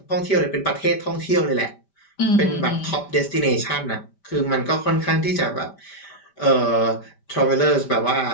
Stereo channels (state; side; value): late; right; 5.1 ms